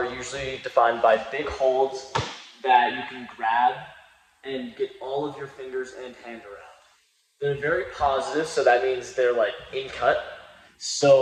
usually defined by big holds that you can grab and get all of your fingers and hand around. They're very positive, so that means they're like in cut.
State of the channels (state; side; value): identical; both; correlation 1.00